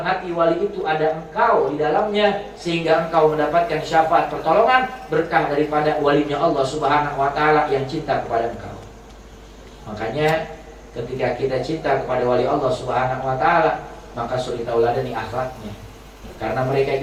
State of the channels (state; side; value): identical; both; correlation 1.00